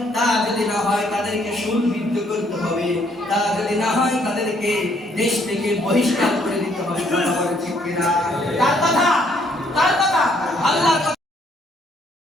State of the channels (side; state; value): both; normal; correlation 0.67